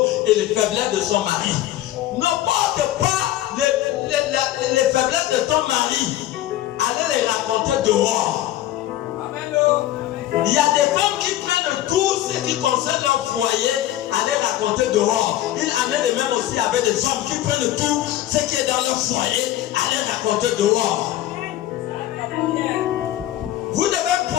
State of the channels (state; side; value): quieter; right; 13.8 dB